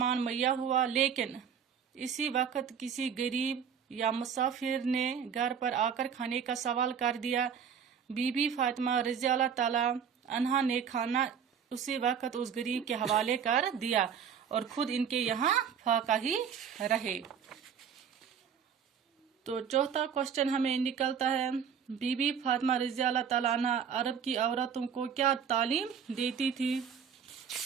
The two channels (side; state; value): left; quieter; 7.5 dB